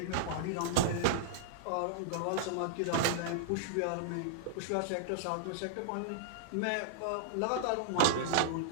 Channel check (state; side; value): different; both; correlation -0.01